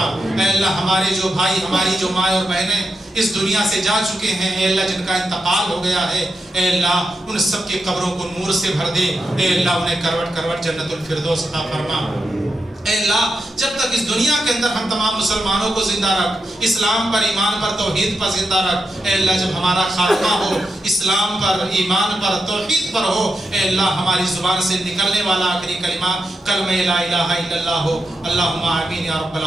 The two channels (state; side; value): normal; both; correlation 0.87